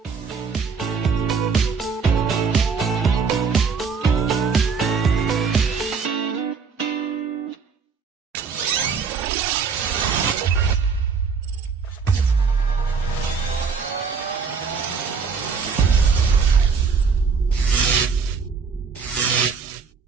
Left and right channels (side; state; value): left; quieter; 5.5 dB